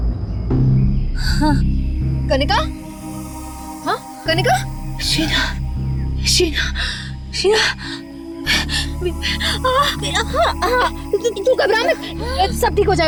कनिका, हाँ कनिका, शीना, शीना, शीना, तू घबरा मत, सब ठीक हो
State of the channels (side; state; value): both; identical; correlation 1.00